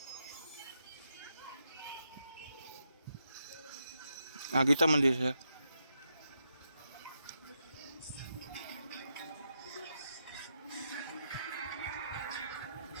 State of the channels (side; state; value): both; inverted; correlation -0.83